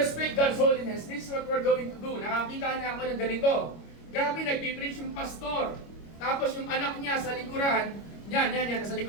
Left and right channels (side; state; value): right; late; 25 ms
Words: God's holiness, this is what we're going to do. Nakakita na ako ng ganito. Grabe, nagpipreach yung pastor. Tapos yung anak niya sa likuran, yan, nasa